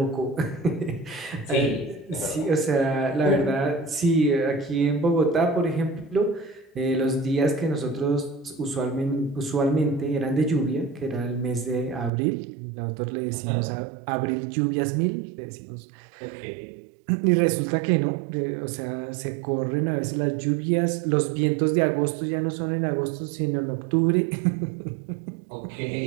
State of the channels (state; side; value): drops out; left; at 12.1 s